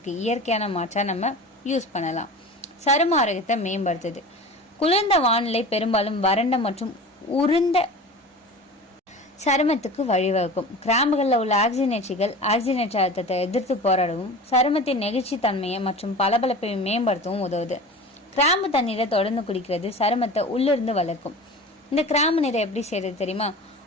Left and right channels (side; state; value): both; normal; correlation 0.35